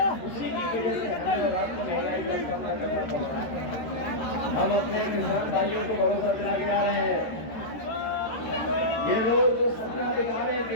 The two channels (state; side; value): late; right; 13 ms